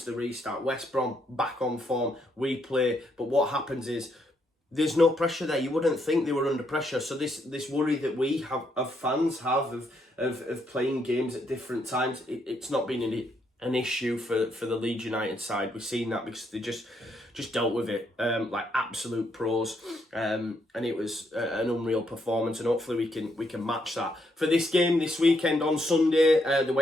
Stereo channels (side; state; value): both; normal; correlation 0.75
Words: the restart. West Brom back on form. We play. But what happens is there's no pressure there. You wouldn't think they were under pressure. So this worry that we have, of fans have, of playing games at different times, it's not been an issue for the Leeds United side. We've seen that because they just dealt with it like absolute pros, and it was an unreal performance, and hopefully we can match that for this game this weekend on Sunday. The